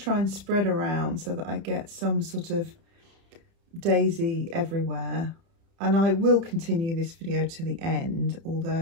and spread around so that I get some sort of daisy everywhere. And I will continue this video to the end,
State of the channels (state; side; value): late; left; 30 ms